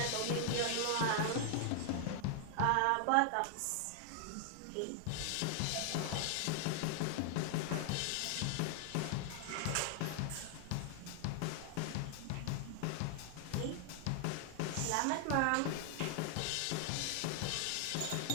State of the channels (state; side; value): different; both; correlation 0.00